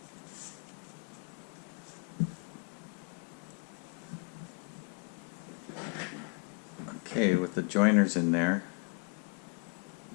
Okay, with the joiners in there,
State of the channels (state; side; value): quieter; right; 38.6 dB